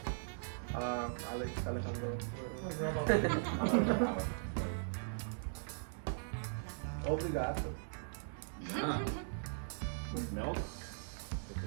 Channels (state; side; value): silent; left; digital silence